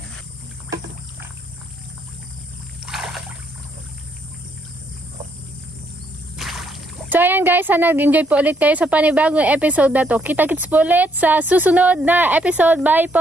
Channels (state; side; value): normal; both; correlation 0.72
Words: So ayan guys, sana nag-enjoy po ulit kayo sa panibagong episode na to. Kita-kits po ulit sa susunod na episode. Bye